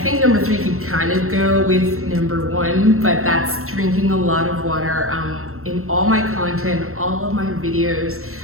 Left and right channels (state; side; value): late; left; 0.63 ms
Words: number 3 could kind of go with number 1, but that's drinking a lot of water. In all my content, all of my videos,